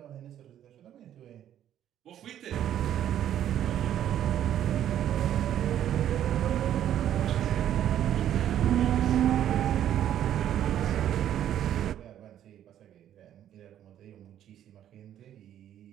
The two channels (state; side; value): quieter; left; 10.9 dB